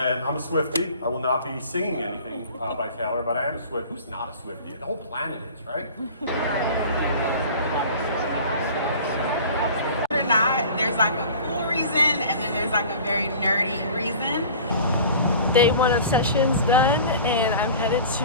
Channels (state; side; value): inverted; both; correlation -0.42